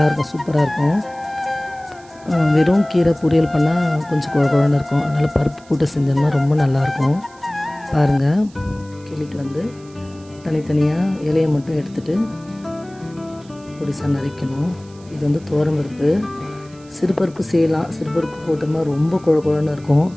சூப்பராக இருக்கும். வெறும் கீரை பொரியல் பண்ணால் கொஞ்சம் குழன்னு இருக்கும். அதனால் பருப்பு போட்டு செஞ்சோம்னா ரொம்ப நல்லாயிருக்கும். பாருங்கள், கிள்ளிட்டு வந்து தனித்தனியாக இலையை மட்டும் எடுத்துகிட்டு பொடிசாக நறுக்கணும். இது வந்து துவரம்பருப்பு. சிறுபருப்பு செய்யலாம். சிறுபருப்பு போட்டோம்னா ரொம்ப குழன்னு இருக்கும்.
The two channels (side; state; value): right; noise; hiss, 26 dB below the sound